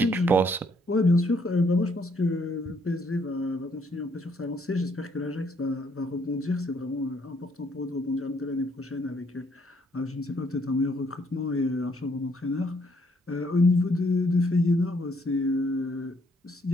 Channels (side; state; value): both; normal; correlation 0.69